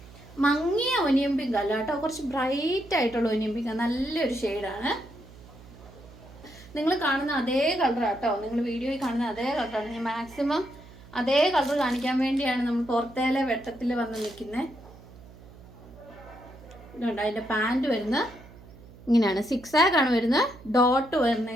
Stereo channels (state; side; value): noise; right; hum, 20 dB below the sound